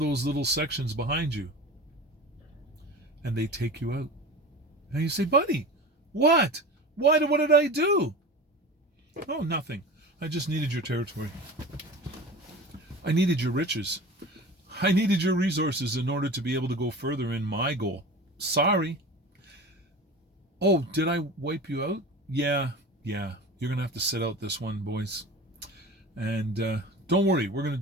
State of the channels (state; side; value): normal; both; correlation 0.34